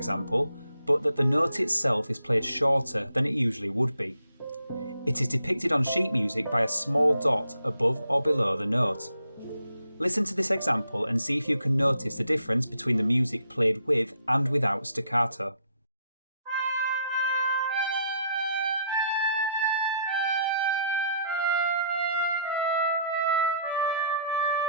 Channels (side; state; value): both; inverted; correlation -0.69